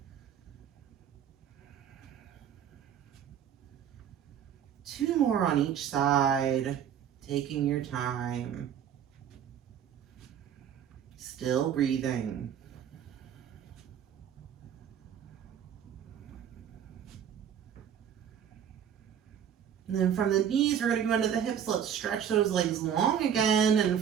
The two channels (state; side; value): quieter; left; 8.8 dB